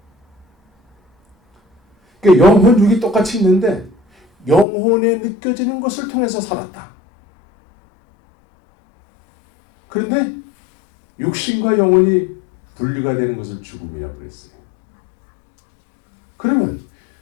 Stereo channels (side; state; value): right; drops out; at 4.7 s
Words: 그러니까 영혼 육이 똑같이 있는데 영혼에 느껴지는 것을 통해서 살았다. 그런데 육신과 영혼이 분리가 되는 것을 죽음이라고 그랬어요. 그러면